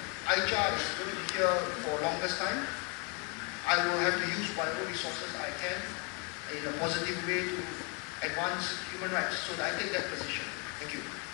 ICHA is going to be here for longest time. I will have to use whatever resources I can in a positive way to advance human rights. So I take that position. Thank you.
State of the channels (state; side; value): quieter; right; 29.9 dB